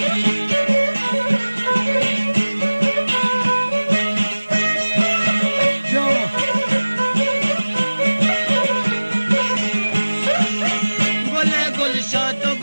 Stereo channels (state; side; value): inverted; both; correlation -1.00